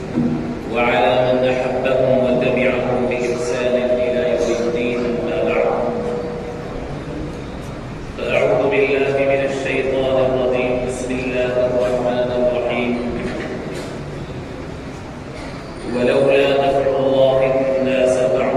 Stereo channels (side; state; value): both; identical; correlation 1.00